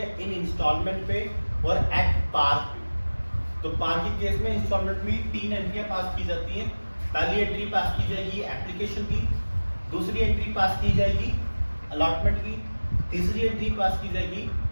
इन इंस्टॉलमेंट पे और एट पार पे। तो पार के केस में इंस्टॉलमेंट में तीन एंट्रियां पास की जाती हैं। पहली एंट्री पास की जाएगी एप्लीकेशन की, दूसरी एंट्री पास की जाएगी अलॉटमेंट की, तीसरी एंट्री पास की जाएगी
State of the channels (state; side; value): inverted; both; correlation -1.00